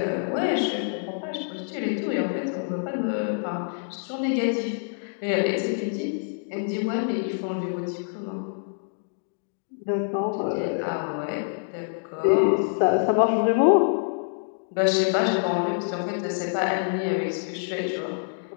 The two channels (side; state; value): right; silent; digital silence